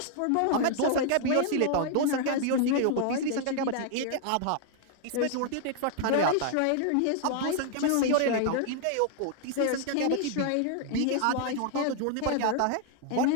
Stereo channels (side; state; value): both; different; correlation 0.00